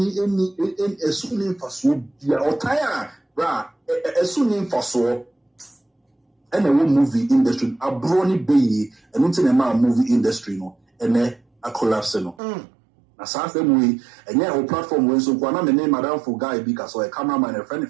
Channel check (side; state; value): left; drops out; at 12.4 s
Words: esuni mfaso bia otaya bra esuni mfaso and a movie industry abroni be and until a movie industry no and a collapse no na sa same way and yeah our platform we so kwana me name madam for guy because a cameraman and a